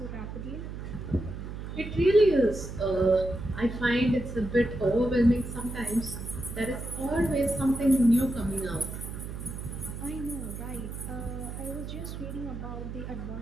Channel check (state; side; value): noise; right; hum, 8 dB below the sound